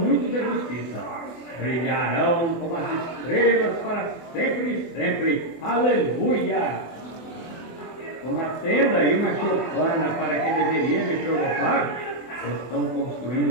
de justiça, brilharão como as estrelas para sempre e sempre. Aleluia! Uma tenda e uma choupana para que deveria me provocar, estão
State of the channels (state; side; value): late; right; 24 ms